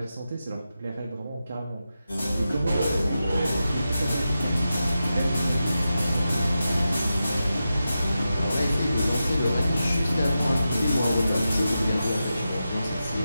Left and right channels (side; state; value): both; inverted; correlation -0.90